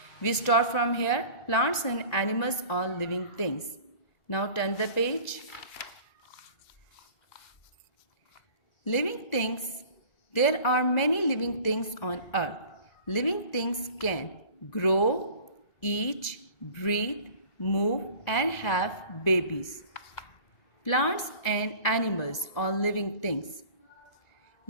We start from here. Plants and animals are living things. Now turn the page. Living things. There are many living things on earth. Living things can grow, eat, breathe, move and have babies. Plants and animals are living things.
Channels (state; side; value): late; right; 2.0 ms